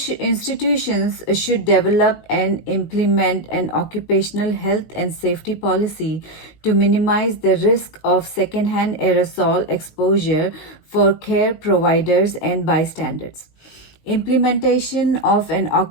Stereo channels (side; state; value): right; late; 19 ms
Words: should develop and implement an occupational health and safety policy to minimize the risk of secondhand aerosol exposure for care providers and bystanders. Implementation of an